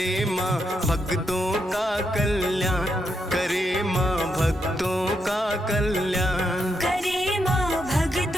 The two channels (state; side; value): normal; both; correlation 0.81